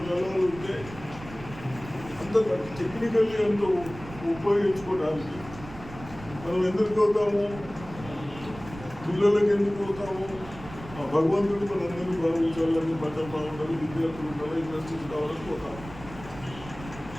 జనాలు ఉంటే అంత టెక్నికల్లీ అంత ఉపయోగించుకోవడానికి మనం ఎందుకు పోతాము? పిల్లలకి ఎందుకు పోతాము? ఆ భగవంతుడు మనందరినీ భావించాలని, బట్టలు బాగుండాలి, విద్యార్థులు ఉండాలి, ఇండస్ట్రీస్ కావాలని పోతాము.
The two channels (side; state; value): right; noise; rumble, 15 dB below the sound